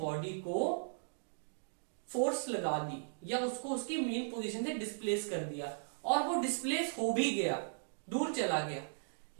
को फोर्स लगा दी या उसको उसकी मेन पोजीशन से डिस्प्लेस कर दिया और वो डिस्प्लेस हो भी गया, दूर चला गया,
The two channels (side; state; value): left; silent; digital silence